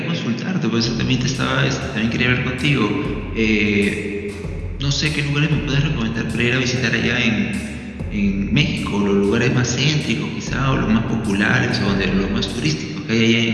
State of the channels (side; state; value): both; identical; correlation 1.00